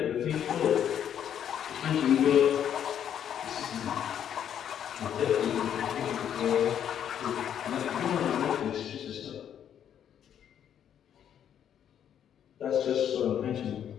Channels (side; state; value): right; quieter; 9.4 dB